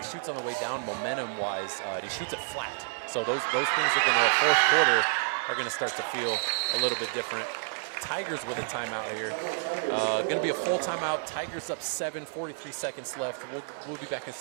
shoots on the way down momentum-wise, and he shoots it flat. So those things are going to, fourth quarter, are going to start to feel a little bit different. Tigers with a timeout here. Going to be a full timeout. Tigers up 7, 43 seconds left. We'll be back in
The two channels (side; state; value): left; silent; 56 dB below the other